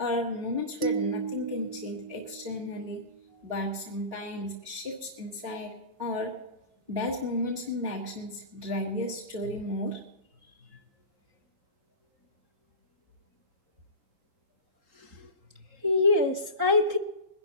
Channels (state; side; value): late; left; 3.7 ms